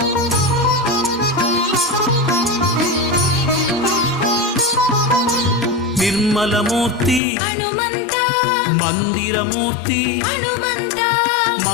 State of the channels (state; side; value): drops out; right; at 7.2 s